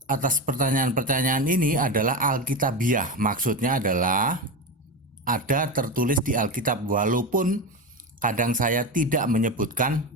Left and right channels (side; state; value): both; normal; correlation 0.19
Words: atas pertanyaan-pertanyaan ini adalah alkitabiah. Maksudnya adalah ada tertulis di Alkitab, walaupun kadang saya tidak menyebutkan